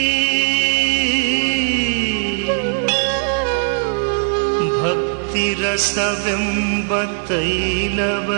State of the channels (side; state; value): left; silent; digital silence